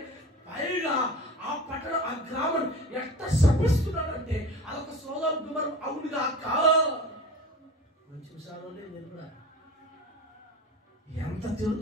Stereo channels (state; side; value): normal; both; correlation 0.36